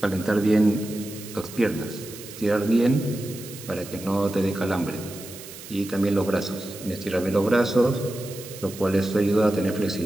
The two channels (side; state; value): right; noise; hiss, 15 dB below the sound